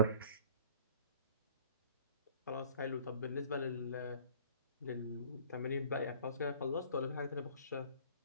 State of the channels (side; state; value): both; inverted; correlation -0.51